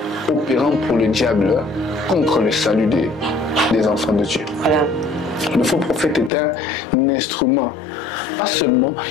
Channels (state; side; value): drops out; right; at 6.3 s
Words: opérant pour le diable contre le salut des enfants de Dieu. Voilà. Le faux prophète est un instrument. Pas seulement,